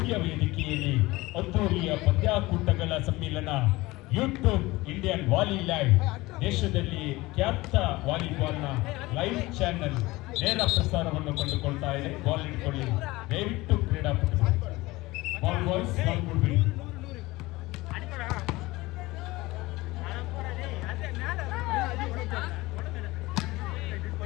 ವೇದಿಕೆಯಲ್ಲಿ ಅದ್ದೂರಿಯ ಪಂದ್ಯಾಕೂಟಗಳ ಸಮ್ಮಿಲನ ಯೂಟ್ಯೂಬ್ ಇಂಡಿಯನ್ ವಾಲಿ ಲೈವ್ ದೇಶದಲ್ಲಿ ಖ್ಯಾತ ವಾಲಿಬಾಲ್ನ ಲೈವ್ ಚಾನೆಲ್ ನೇರ ಪ್ರಸಾರವನ್ನು ಕಂಡುಕೊಳ್ತಾ ಇದೆ. ಬಾಲ್ ಇಟ್ಕೊಳ್ಳಿ ದಯವಿಟ್ಟು ಕ್ರೀಡಾಪಟುಗಳು. ಬಾಲ್ ಬಾಯ್ಸ್ ಬಾಲ್ ಕೊಡ್ಬೇಡಿ.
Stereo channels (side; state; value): right; quieter; 20.4 dB